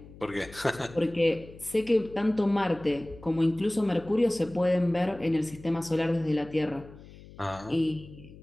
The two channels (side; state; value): left; noise; hum, 19 dB below the sound